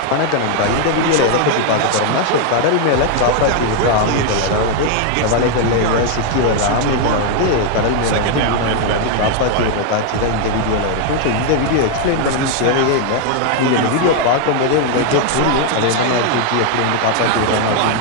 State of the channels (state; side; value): different; both; correlation 0.00